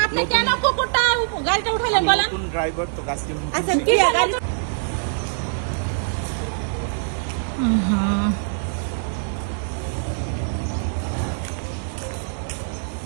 আপনি কেন কুকুরটা গাড়িটা উঠাইলেন বলেন? নতুন ড্রাইভার তো গাছটি আচ্ছা কি গাড়ি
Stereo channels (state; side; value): silent; left; digital silence